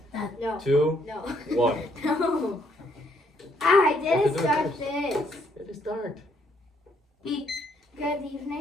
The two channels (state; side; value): normal; both; correlation 0.70